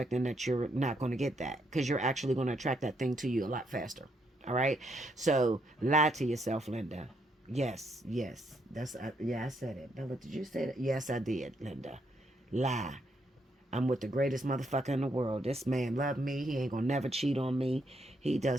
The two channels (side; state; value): both; normal; correlation 0.75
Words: that you're not going to get that, because you're actually going to attract that thing to you a lot faster. All right, so lie to yourself, Linda. Yes, that's yeah, I said it. Bella, did you say that? Yes, I did, Linda. Lie. I'm with the greatest motherfucker in the world. This man love me. He ain't gonna never cheat on me. He